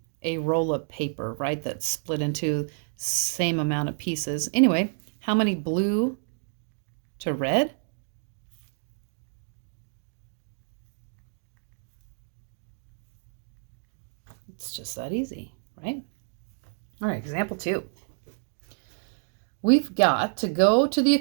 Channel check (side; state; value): left; silent; digital silence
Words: a roll of paper, right, that's split into same amount of pieces. Anyway, how many blue to red? It's just that easy, right? All right, example 2. We've got to go to the